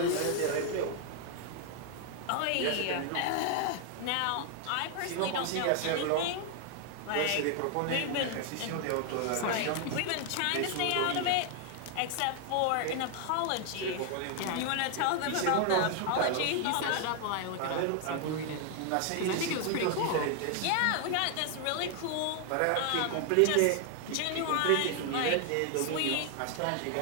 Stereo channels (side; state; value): both; different; correlation 0.00